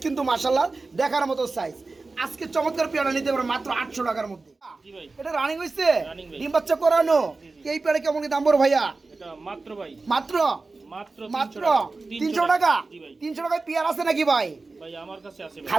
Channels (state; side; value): quieter; left; 3.7 dB